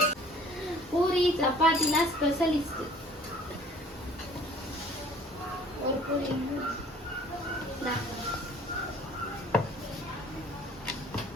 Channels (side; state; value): both; normal; correlation 0.52